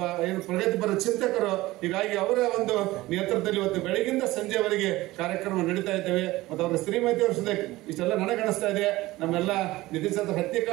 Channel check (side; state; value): left; quieter; 18.4 dB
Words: ಪ್ರಗತಿಪರ ಚಿಂತಕರು. ಹೀಗಾಗಿ ಅವರ ಒಂದು ನೇತೃತ್ವದಲ್ಲಿ ಇವತ್ತು ಬೆಳಗಿಂದ ಸಂಜೆವರೆಗೆ ಕಾರ್ಯಕ್ರಮ ನಡೀತಾ ಇದ್ದೇವೆ. ಮತ್ತು ಅವರ ಶ್ರೀಮತಿಯವ್ರ ಸದ್ಯಕ್ಕೆ ಇಷ್ಟೆಲ್ಲ ನನಗಣಿಸ್ತಾ ಇದೆ. ನಮ್ಮೆಲ್ಲ ನಿತಿನ್ ಚಂದ್ರ